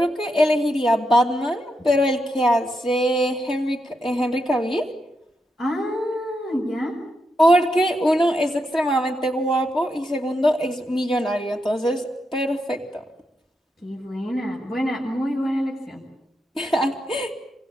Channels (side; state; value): both; normal; correlation 0.84